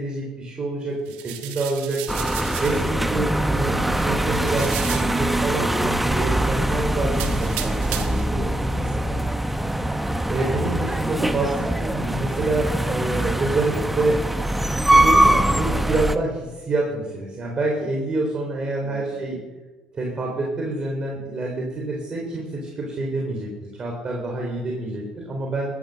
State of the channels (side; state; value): both; normal; correlation 0.85